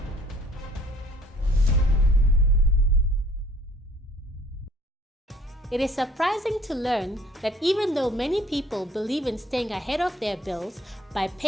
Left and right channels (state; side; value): normal; both; correlation 0.57